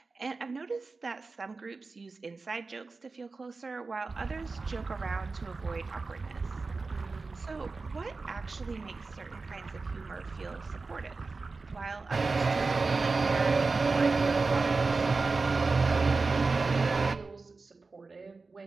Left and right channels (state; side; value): quieter; left; 4.0 dB